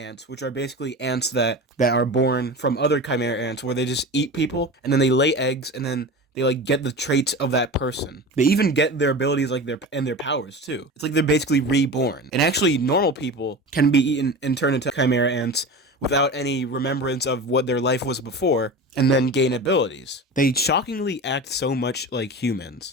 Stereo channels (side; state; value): both; normal; correlation 0.31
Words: which are basically ants that are born from other Chimera ants, where they just eat people, and then they lay eggs, and then they like get the traits of that person. They even get their abilities their powers too. It's like they're basically reborn. And actually, normal people can be eaten and turn into Chimera ants without any remembrance of what their life was before, and then gain abilities. They shockingly act so much like